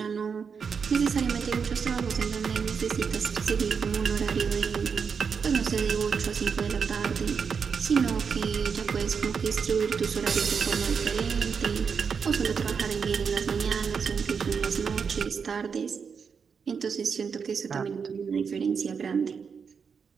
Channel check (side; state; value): left; quieter; 6.1 dB